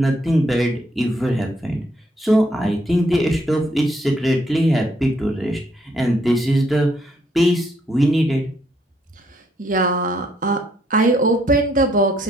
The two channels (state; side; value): normal; both; correlation 0.71